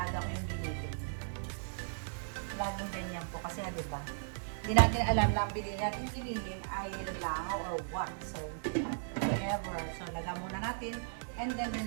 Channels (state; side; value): silent; left; digital silence